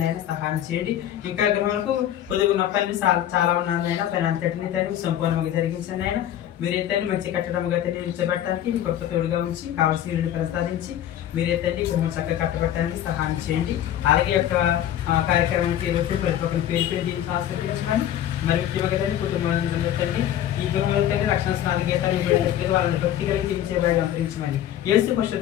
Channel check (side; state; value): right; quieter; 11.4 dB